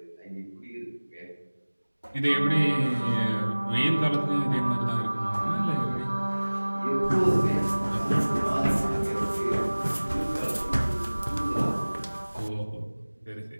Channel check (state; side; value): inverted; both; correlation -1.00